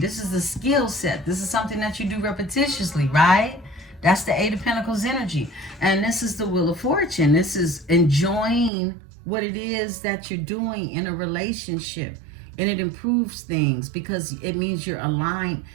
is a skill set. This is something that you do repetitiously, right? That's the Eight of Pentacles energy. And this is the Wheel of Fortune. This is enjoying what it is that you're doing in a relationship. And it improves things because it means you're aligned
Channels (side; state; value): left; drops out; at 8.7 s